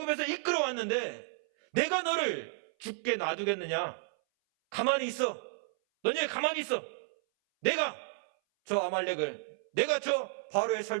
이끌어왔는데 내가 너를 죽게 놔두겠느냐? 가만히 있어. 너희 가만히 있어. 내가 저 아말렉을, 내가 저 바로의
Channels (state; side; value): silent; left; 56 dB below the other